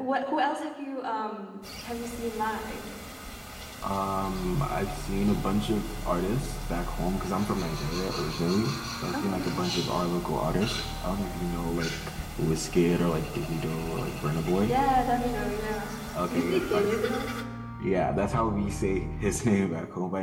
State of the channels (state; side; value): identical; both; correlation 1.00